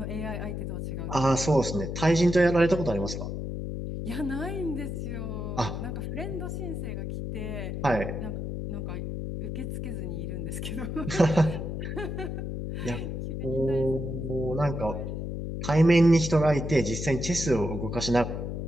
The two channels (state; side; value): noise; left; hum, 4 dB below the sound